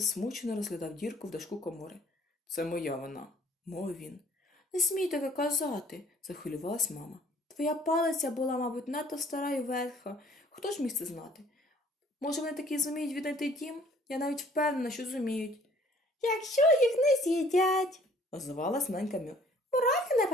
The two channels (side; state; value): both; normal; correlation 0.57